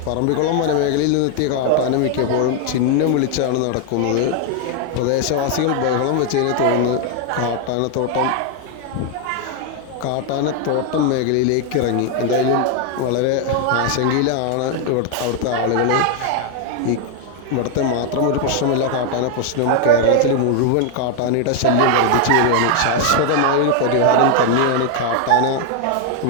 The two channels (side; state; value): both; different; correlation 0.00